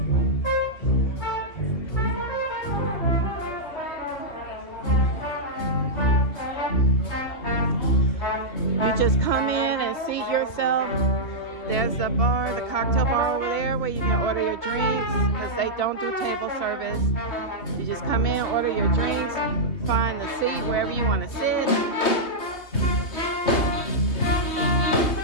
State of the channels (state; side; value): late; right; 2.6 ms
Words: You just come in and seat yourself. There There's the bar, the cocktail bar over there where you can order your drinks because they don't do table service. You just come in, order your drinks, find the seat wherever you want to sit.